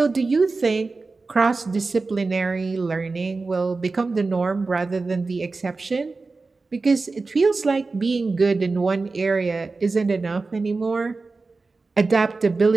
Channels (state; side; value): quieter; left; 3.8 dB